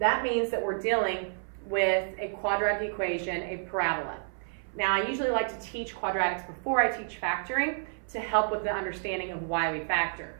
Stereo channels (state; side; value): silent; left; 58 dB below the other